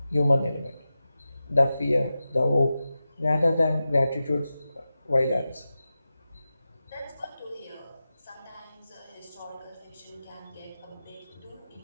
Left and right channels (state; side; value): inverted; both; correlation -0.93